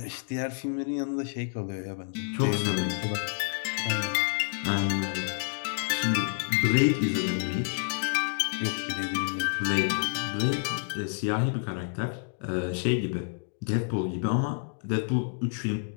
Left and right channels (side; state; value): right; silent; digital silence